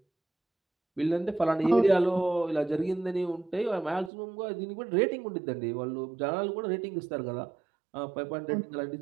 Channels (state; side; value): drops out; left; at 4.1 s